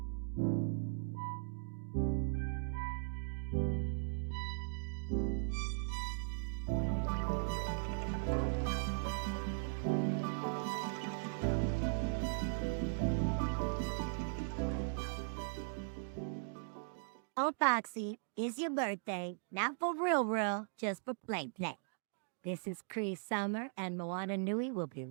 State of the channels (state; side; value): silent; left; digital silence